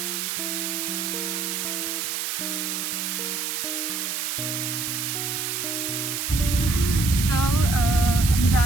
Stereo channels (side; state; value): right; noise; hiss, 2 dB below the sound